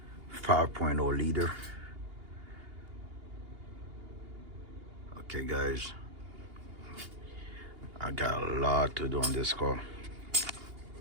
5.0 liter. Okay, guys, I got a lot to do on this car.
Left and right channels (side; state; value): left; late; 2.8 ms